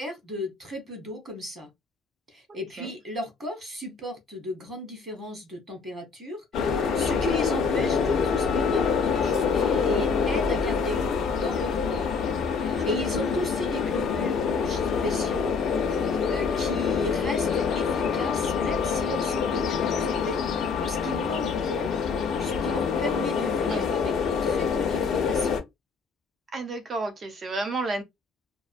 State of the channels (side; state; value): right; quieter; 4.8 dB